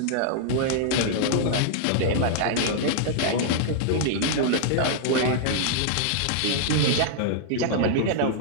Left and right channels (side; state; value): both; different; correlation -0.01